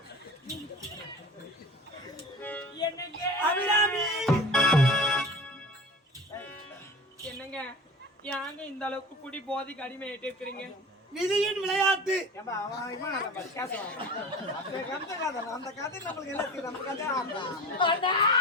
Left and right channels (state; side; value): normal; both; correlation 0.36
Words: என்னங்க அபிராமி என்னங்க யாங்க இந்த அளவுக்கு குடி போதைக்கு அடிமையாயிட்டு இருக்கிறீங்க? விதியின் விளையாட்டு. ஏம்பா அவன் இவன் நம்ம பேசுவான். அந்த கதை கதை அந்த கதை நமக்கு எல்லாம் தெரியும். நம்ம கதை ஆமா. அண்ணா